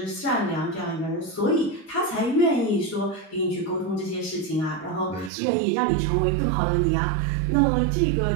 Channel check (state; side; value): drops out; left; at 5.3 s